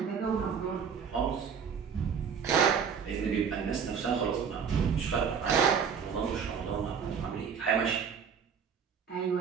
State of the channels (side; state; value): left; quieter; 6.8 dB